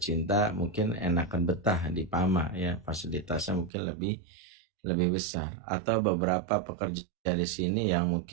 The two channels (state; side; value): drops out; left; at 3.7 s